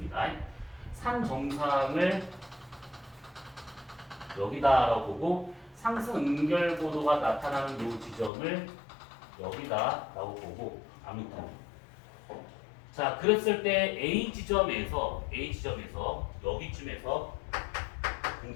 산 정상을 여기다라고 보고 상승 응결고도가 나타나는 이 지점을 여기다라고 보고 아무튼 자, 그랬을 때 A 지점에서 여기쯤에서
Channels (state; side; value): drops out; right; at 8.3 s